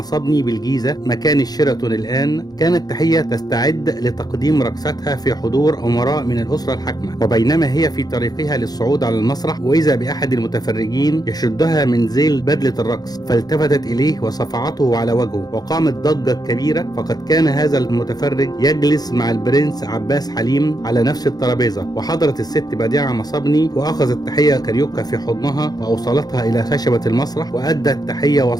بالجيزة مكان الشيراتون الآن، كانت تحية تستعد لتقديم رقصتها في حضور أمراء من الأسرة الحاكمة، وبينما هي في طريقها للصعود على المسرح وإذا بأحد المتفرجين يشدها من ذيل بدلة الرقص، فالتفتت إليه وصفعته على وجهه وقامت ضجة كبيرة. فقد كان هذا المتفرج يجلس مع البرنس عباس حليم على نفس الترابيزة، وحضرت الست بديعة مصابني وأخذت تحية كاريوكا في حضنها وأوصلتها إلى خشبة المسرح وأدت تحية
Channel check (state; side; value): late; right; 0.19 ms